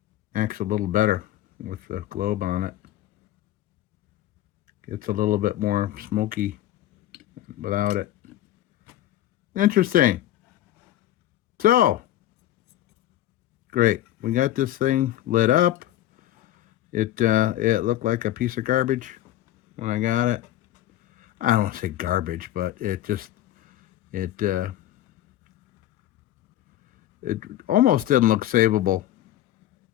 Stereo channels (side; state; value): right; quieter; 13.5 dB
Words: Acts a little better with the globe on it. Gets a little bit more smoky without it. Interesting. So, great. We got this thing lit up. It looked like a piece of garbage when I got it. I don't want to say garbage, but it almost didn't look savable.